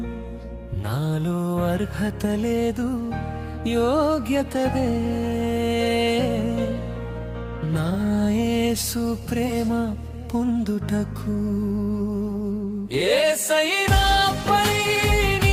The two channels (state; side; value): identical; both; correlation 1.00